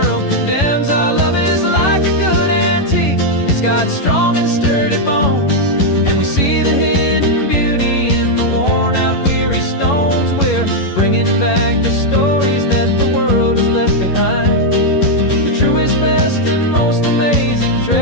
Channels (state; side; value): late; right; 11 ms